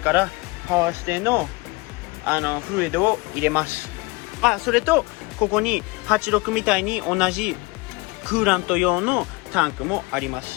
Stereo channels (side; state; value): right; quieter; 24.4 dB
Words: からパワーステのフルイドを入れます。それとここに86みたいに同じクーラント用のタンクもありま